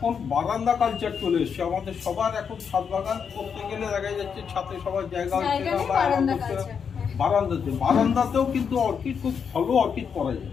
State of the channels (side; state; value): right; quieter; 6.7 dB